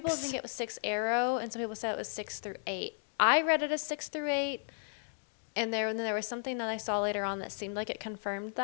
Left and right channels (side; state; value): right; silent; digital silence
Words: think it was 6 Arrow, and some people said it was 6 through 8. I read it as 6 through 8, and then there was something that I saw later on that seemed like it confirmed